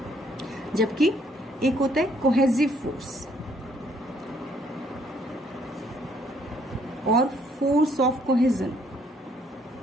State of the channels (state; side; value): normal; both; correlation 0.66